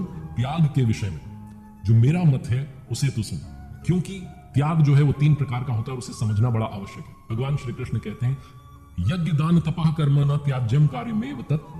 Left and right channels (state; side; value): identical; both; correlation 1.00